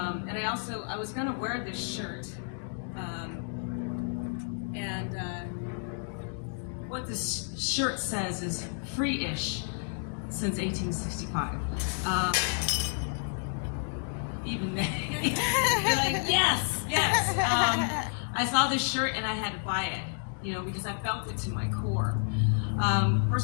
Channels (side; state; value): right; silent; 57 dB below the other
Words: I was going to wear this shirt, what this shirt says is free-ish since 1865. Even then, you're like, yes. I saw this shirt and I had to buy it, because I felt it to my core.